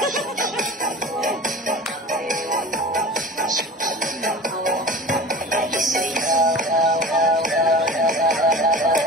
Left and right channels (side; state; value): both; normal; correlation 0.37